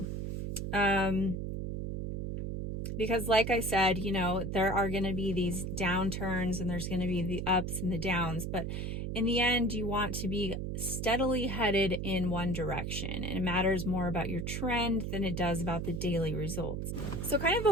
Because like I said, there are going to be these downturns and there's going to be the ups and the downs, but in the end, you want to be steadily headed in one direction, and it matters more about your trend than it does about the daily results. So kind of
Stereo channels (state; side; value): noise; right; hum, 3 dB below the sound